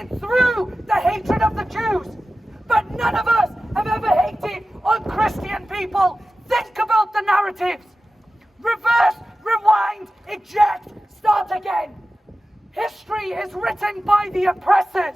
through the hatred of the Jews. But none of us have ever hated on Christian people. Think about the narratives. Reverse, rewind, eject, start again. History is written by the oppressors,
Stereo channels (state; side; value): normal; both; correlation 0.94